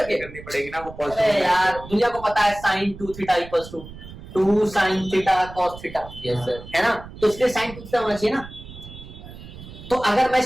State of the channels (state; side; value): noise; right; rumble, 15 dB below the sound